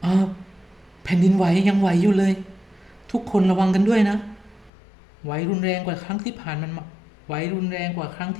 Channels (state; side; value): drops out; right; at 4.7 s